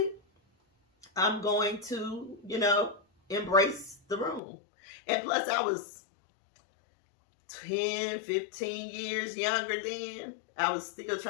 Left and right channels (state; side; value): drops out; right; at 4.4 s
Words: I'm going to, embrace the room. And plus, I was 10, 15 years younger then. I was still